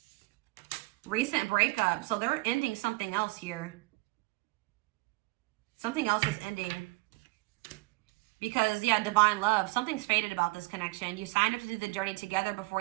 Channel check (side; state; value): left; quieter; 24.2 dB